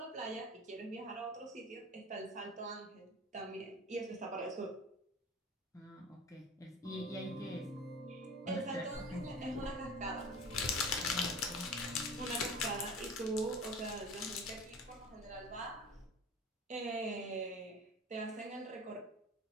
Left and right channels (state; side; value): normal; both; correlation 0.37